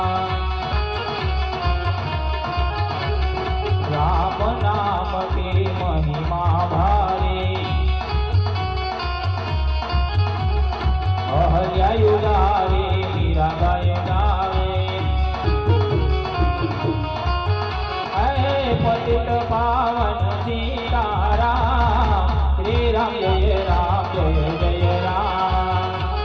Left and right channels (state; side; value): identical; both; correlation 1.00